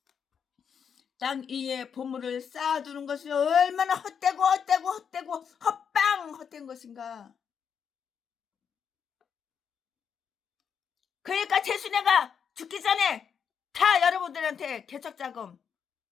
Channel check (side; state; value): right; quieter; 7.2 dB